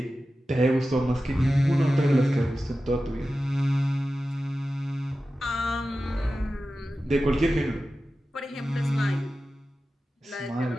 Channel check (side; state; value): both; normal; correlation 0.94